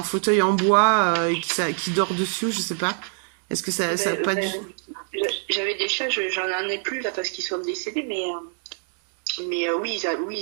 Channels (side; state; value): left; silent; 56 dB below the other